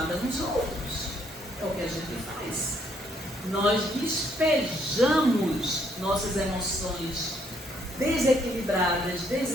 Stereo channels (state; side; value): normal; both; correlation 0.69